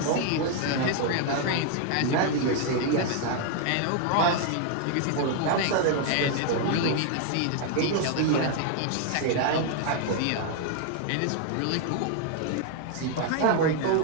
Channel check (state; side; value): different; both; correlation 0.00